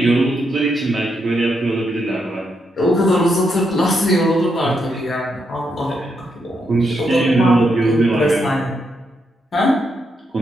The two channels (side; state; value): both; normal; correlation 0.80